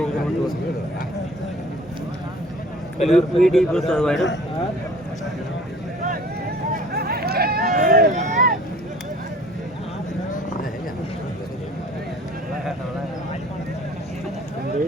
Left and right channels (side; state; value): both; normal; correlation 0.48